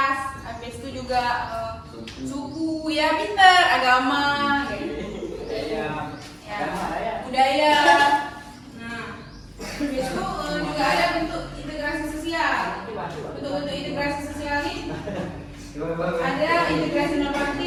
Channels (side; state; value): both; identical; correlation 1.00